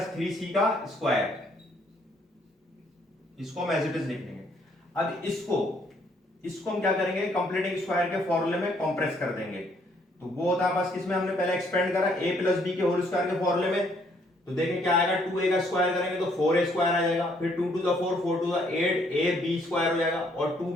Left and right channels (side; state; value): both; normal; correlation 0.67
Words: 3c का स्क्वायर, इसको हम एज इट इज लिख लेंगे। अब इसको हम क्या करेंगे, कंप्लीटिंग स्क्वायर के फॉर्मूले में कंप्रेस कर देंगे। तो वो होता है बस किसमें हमने पहले एक्सपेंड करा a प्लस बी के होल स्क्वायर के फॉर्मूले में। तो देखें क्या आएगा, 2a का स्क्वायर करेंगे तो 4a स्क्वायर आ जाएगा, फिर 2 to the 4 4 to the 8 ab square हो जाएगा और